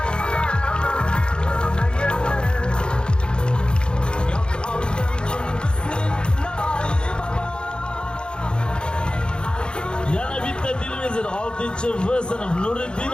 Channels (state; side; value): late; right; 0.051 ms